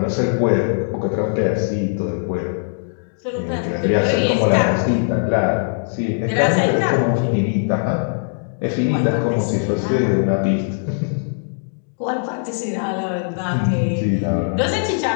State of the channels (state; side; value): silent; right; digital silence